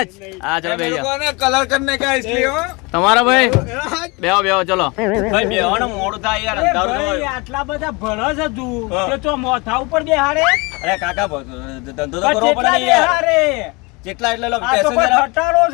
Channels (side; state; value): right; quieter; 27.2 dB